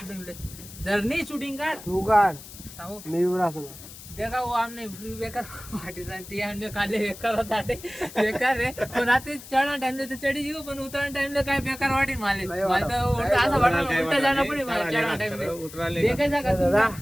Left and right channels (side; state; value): left; noise; hiss, 16 dB below the sound